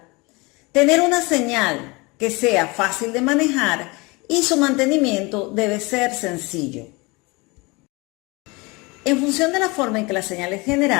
tener una señal que sea fácil de manejar y su mantenimiento debe ser sencillo. En función de la forma en que la señal es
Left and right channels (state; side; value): quieter; right; 25.8 dB